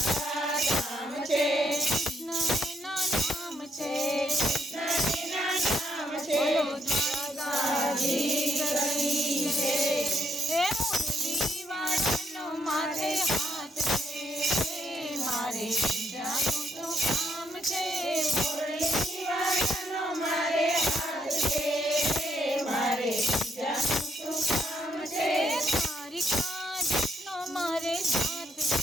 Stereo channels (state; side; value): normal; both; correlation 0.74